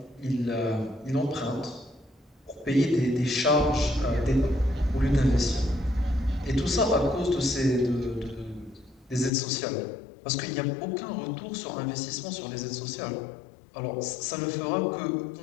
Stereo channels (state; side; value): drops out; right; at 9.3 s